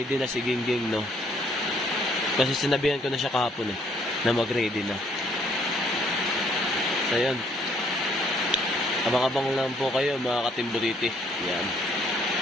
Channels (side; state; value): both; normal; correlation 0.65